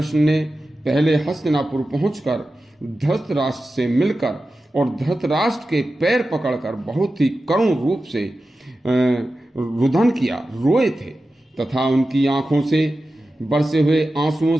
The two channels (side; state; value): both; normal; correlation 0.93